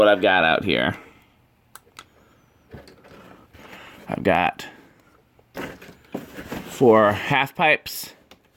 I've got out here. I've got 4 half pipes,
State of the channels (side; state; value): both; identical; correlation 1.00